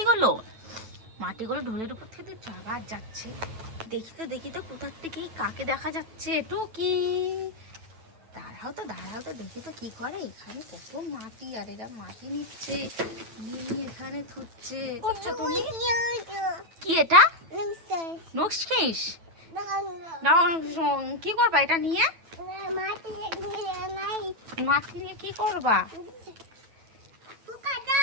মাটিগুলো ঢোলের উপর থেকে দিচ্ছ। আবার যাচ্ছে। দেখি তো কোথার থেকে কাকে দেখা যাচ্ছে। টুকি, দাঁড়াও তো দেখি তো কি করে। এখানে কত মাটি, আর এরা মাটি নিচ্ছে, নিয়ে এখানে থুচ্ছে। করছো তুমি কি? এটা নক্সফিশ। কি করবা এটা নিয়ে? মাটি নিয়ে কি করবা?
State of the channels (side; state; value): left; late; 9.1 ms